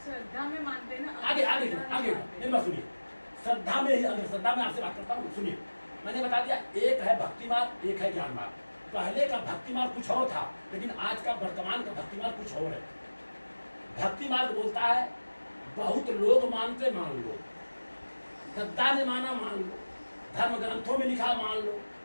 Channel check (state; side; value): inverted; both; correlation -1.00